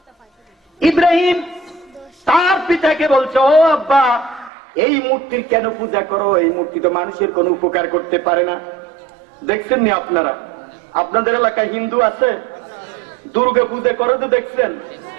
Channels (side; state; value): left; drops out; at 4.5 s